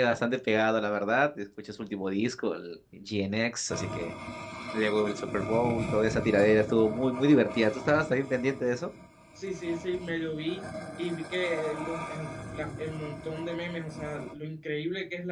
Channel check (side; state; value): both; identical; correlation 1.00